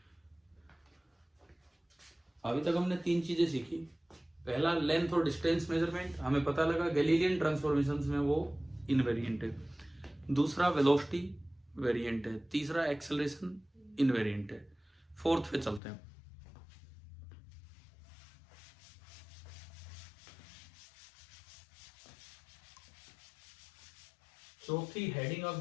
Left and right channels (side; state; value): right; drops out; at 15.8 s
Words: अभी तक हमने 3 चीजें सीखी। पहला लेंथ और डिस्टेंस मेजरमेंट, हमें पता लगा गैलीलियन ट्रांसफॉर्मेशंस में वो इनवेरिएंट है। दूसरा वेलोसिटी वेरिएंट है। तीसरा एक्सेलरेशन इनवेरिएंट है। फोर्थ पे चलते हैं। चौथी हेडिंग आप